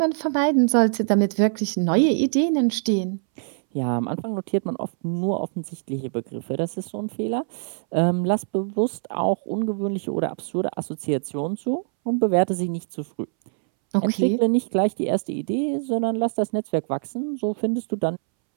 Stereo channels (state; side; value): silent; left; 63 dB below the other